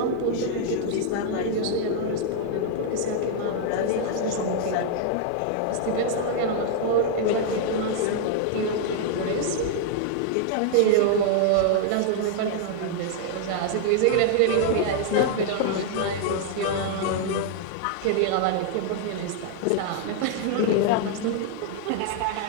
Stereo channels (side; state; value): both; different; correlation 0.00